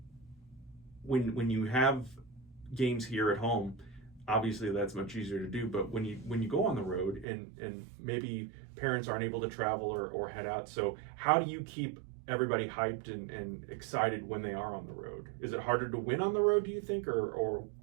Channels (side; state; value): left; drops out; at 7.2 s